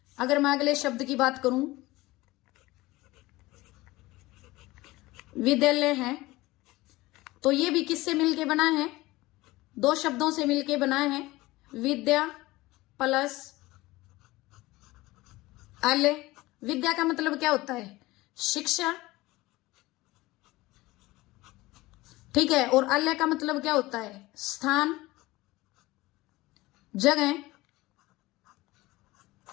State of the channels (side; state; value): right; quieter; 19.6 dB